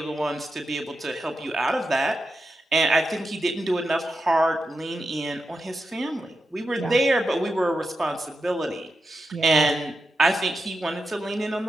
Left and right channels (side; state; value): both; normal; correlation 0.89